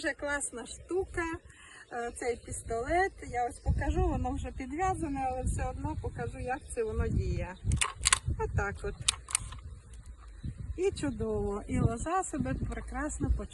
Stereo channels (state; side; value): identical; both; correlation 1.00